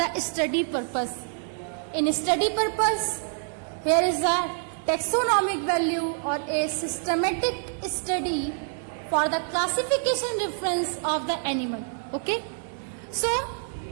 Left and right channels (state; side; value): silent; left; 60 dB below the other